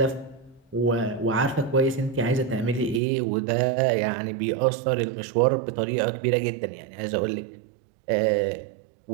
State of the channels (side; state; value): left; drops out; at 3.0 s